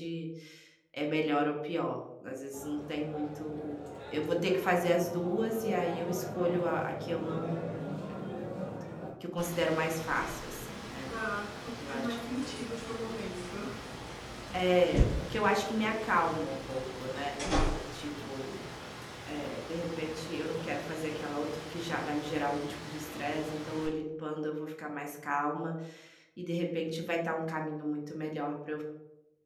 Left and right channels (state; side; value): identical; both; correlation 1.00